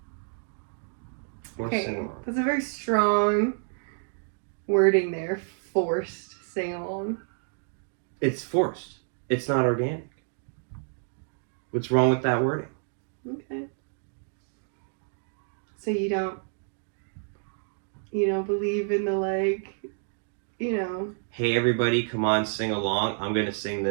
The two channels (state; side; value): silent; left; 59 dB below the other